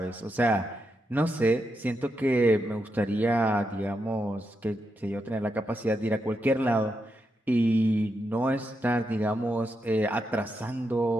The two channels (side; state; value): both; normal; correlation 0.84